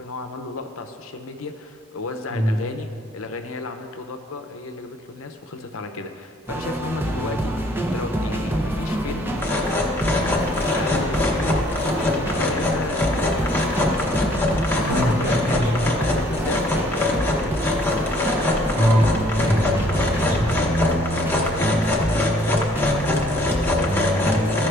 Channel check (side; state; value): both; normal; correlation 0.60